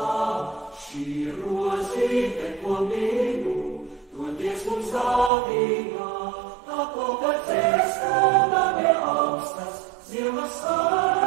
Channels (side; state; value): left; drops out; at 5.3 s